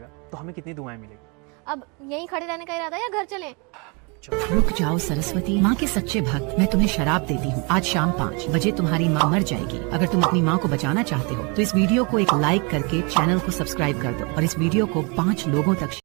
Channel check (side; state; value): left; quieter; 31.4 dB